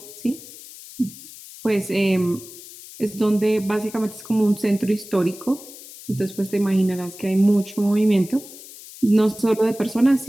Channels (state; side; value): noise; left; hiss, 17 dB below the sound